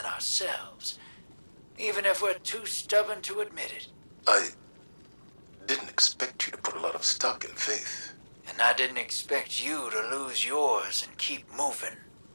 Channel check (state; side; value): inverted; both; correlation -1.00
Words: ourselves. Even if we're too stubborn to admit it. I didn't expect you to put a lot of stock in faith. And I didn't expect you to lose yours and keep moving.